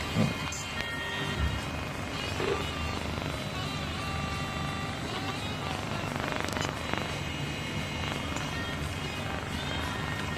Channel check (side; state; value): both; identical; correlation 1.00